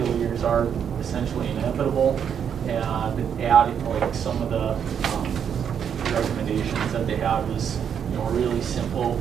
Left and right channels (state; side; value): quieter; left; 8.0 dB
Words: are essentially inevitable, and adding like some of the recommendations that they had was really simple.